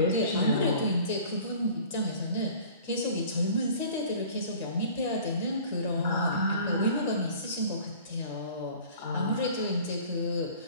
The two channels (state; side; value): inverted; both; correlation -0.47